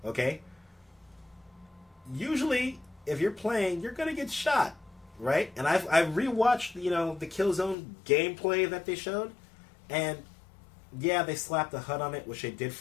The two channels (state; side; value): drops out; right; at 7.8 s